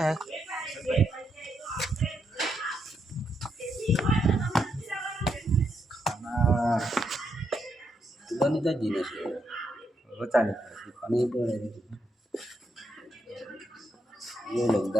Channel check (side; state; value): both; normal; correlation 0.80